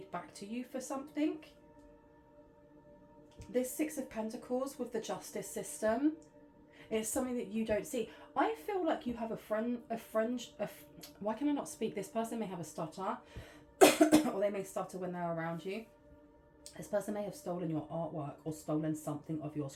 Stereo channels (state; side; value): identical; both; correlation 1.00